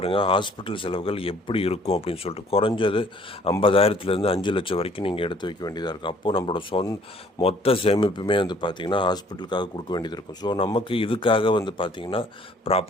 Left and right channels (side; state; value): both; normal; correlation 0.58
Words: ஹாஸ்பிட்டல் செலவுகள் எப்படி இருக்கும் அப்படின்னு சொல்லிட்டு. குறைஞ்சது 50,000லேருந்து 5 லட்சம் வரைக்கும் நீங்கள் எடுத்து வைக்க வேண்டியதாக இருக்கும். அப்போது நம்மளோட மொத்த சேமிப்புமே பார்த்திங்கன்னா ஹாஸ்பிட்டலுக்காக கொடுக்க வேண்டியது இருக்கும். ஸோ நமக்கு இதுக்காக பார்த்திங்கன்னா